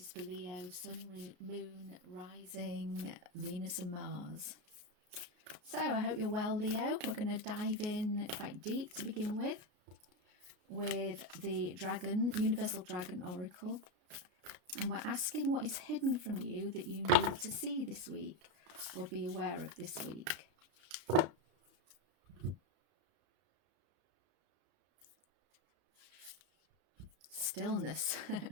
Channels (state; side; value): late; left; 33 ms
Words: for Leo, Sun, Moon, Rising, Venus and Mars. So I hope you're well, Leo. We're going to dive in quite deep to begin with the Dragon, Universal Dragon Oracle. And we're asking what is hidden from you that you need to see this week or be aware of this week. Stillness.